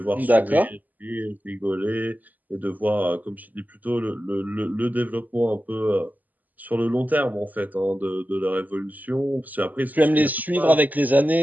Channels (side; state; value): left; late; 0.082 ms